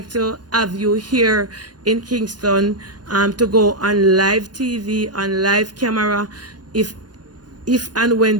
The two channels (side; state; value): left; late; 0.69 ms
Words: to have you here in Kingston, to go on live TV, on live camera, if and